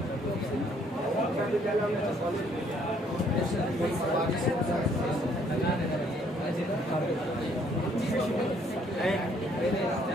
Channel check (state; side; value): normal; both; correlation 0.65